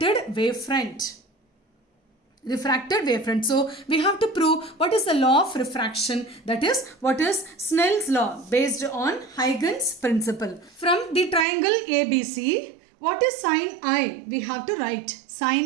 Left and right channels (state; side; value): drops out; left; at 11.5 s